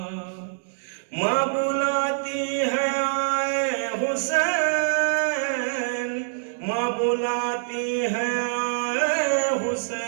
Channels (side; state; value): left; silent; digital silence